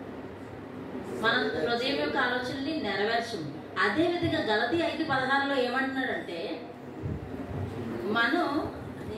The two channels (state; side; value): identical; both; correlation 1.00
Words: మన హృదయం యొక్క ఆలోచనని నెరవేర్చము. అదే విధంగా గలతీ 5:16 ఏమంటున్నాడంటే మనం